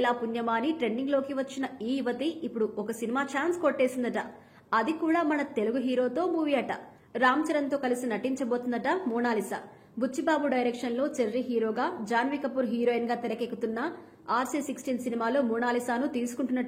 పుణ్యమాని ట్రెండింగ్ లోకి వచ్చిన ఈ యువతి ఇప్పుడు ఒక సినిమా ఛాన్స్ కొట్టేసిందట. అది కూడా మన తెలుగు హీరోతో మూవీ అట. రామ్ చరణ్ తో కలిసి నటించబోతుందట మోనాలిసా. బుచ్చిబాబు డైరెక్షన్ లో చెర్రీ హీరోగా, జాన్వీ కపూర్ హీరోయిన్ గా తెరకెక్కుతున్న RC16 సినిమాలో మోనాలిసాను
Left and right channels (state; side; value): identical; both; correlation 1.00